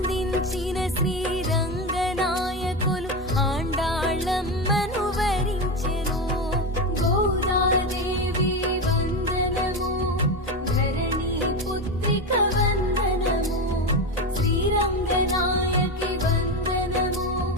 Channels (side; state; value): both; normal; correlation 0.17